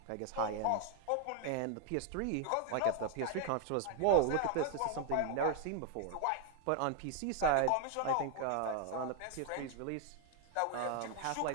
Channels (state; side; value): different; both; correlation 0.00